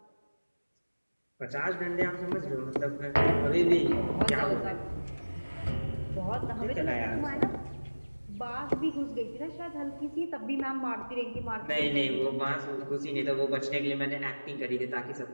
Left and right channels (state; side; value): inverted; both; correlation -1.00